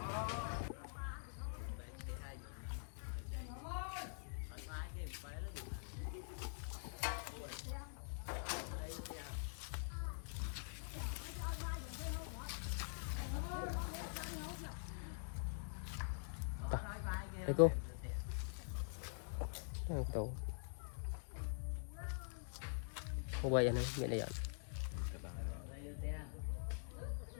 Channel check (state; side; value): silent; right; digital silence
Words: Đây cô tủ cô quay anh nhận đây ạ